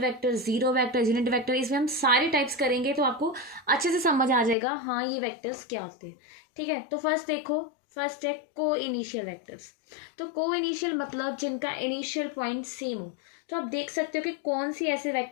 vector, zero vector, unit vector, इसमें हम सारे टाइप्स करेंगे, तो आपको अच्छे से समझ आ जाएगा हाँ ये वेक्टर्स क्या होते हैं, ठीक है। तो फर्स्ट देखो, फर्स्ट है को इनिशियल वेक्टर्स। तो को इनिशियल मतलब जिनका इनिशियल पॉइंट सेम हो। तो आप देख सकते हो कि कौन सी ऐसे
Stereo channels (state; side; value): drops out; right; at 4.5 s